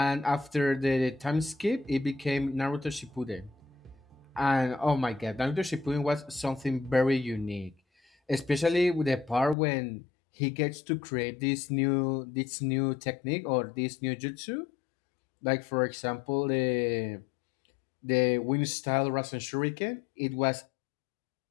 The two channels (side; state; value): right; drops out; at 9.6 s